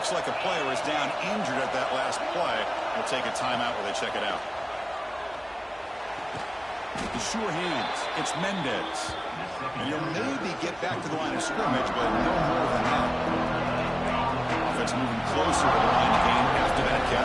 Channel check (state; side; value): identical; both; correlation 1.00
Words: like a player is down injured at that last play. We'll take a timeout while they check it out. The sure hands. It's Mendez. And he'll maybe get back to the line of scrimmage, but no more than that. Offense moving closer to the line of game after that